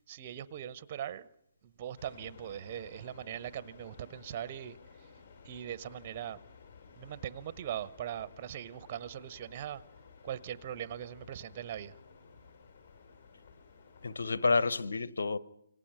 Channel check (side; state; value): both; inverted; correlation -0.75